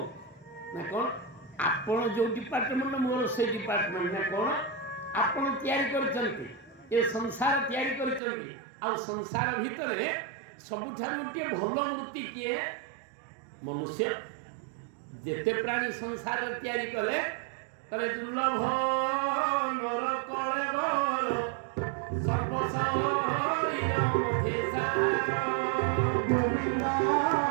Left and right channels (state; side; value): drops out; left; at 8.2 s